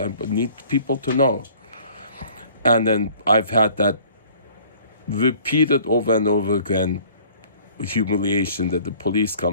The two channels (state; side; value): inverted; both; correlation -0.53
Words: I need people to know. And then I've had that repeated over and over again, humiliation, that the police